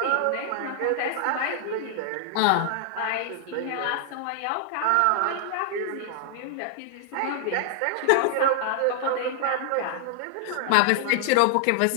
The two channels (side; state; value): both; different; correlation -0.01